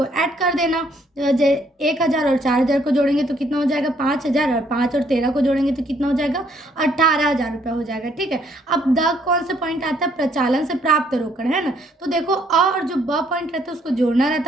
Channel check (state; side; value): normal; both; correlation 0.67